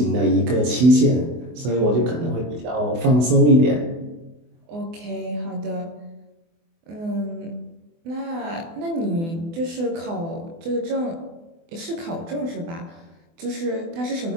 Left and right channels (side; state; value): left; late; 24 ms